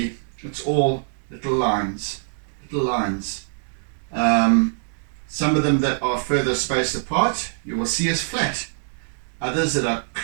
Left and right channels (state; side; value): silent; left; 63 dB below the other